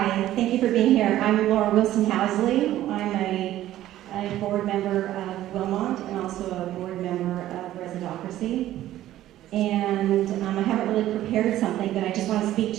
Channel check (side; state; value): left; quieter; 13.7 dB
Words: thank you for being here. I'm Laura Wilson-Housley. I'm a board member of Wilmont and also a board member of Residocracy. And I haven't really prepared something, but I just want to speak